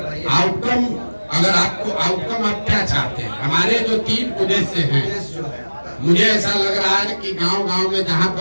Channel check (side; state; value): both; inverted; correlation -1.00